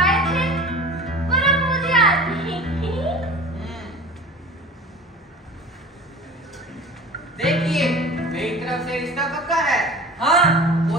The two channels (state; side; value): normal; both; correlation 0.38